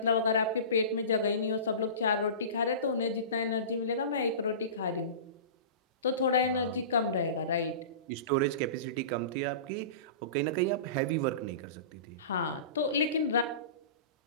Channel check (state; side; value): inverted; both; correlation -0.33